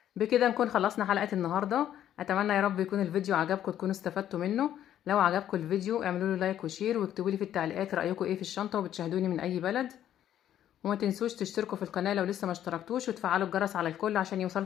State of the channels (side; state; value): right; quieter; 11.1 dB